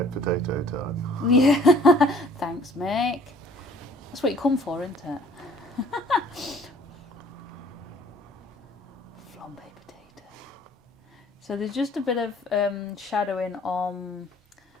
time. Yeah, thanks, Mick. That's what you come for, isn't it? Flambe potato. So there's just a bit of shadowing on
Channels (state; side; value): normal; both; correlation 0.54